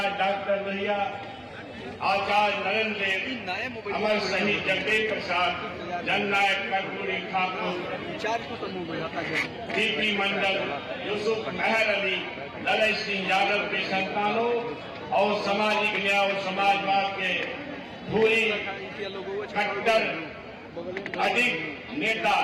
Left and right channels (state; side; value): identical; both; correlation 1.00